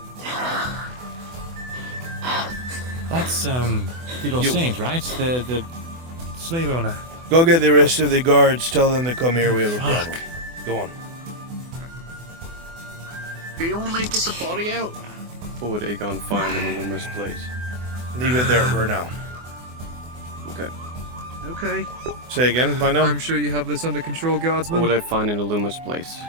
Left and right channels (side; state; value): left; late; 24 ms